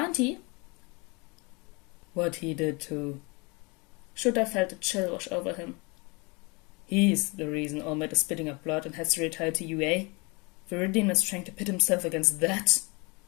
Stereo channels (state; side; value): quieter; right; 28.4 dB